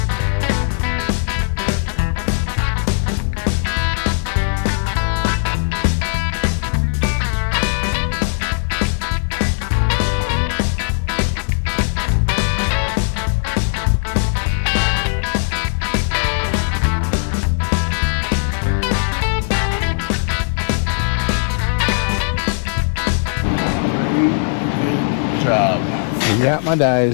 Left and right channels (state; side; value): silent; right; digital silence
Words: Job. I got my